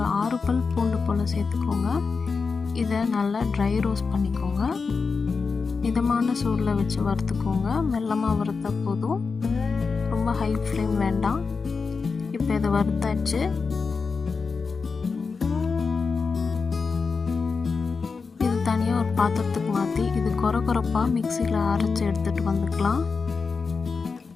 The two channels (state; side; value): quieter; right; 4.8 dB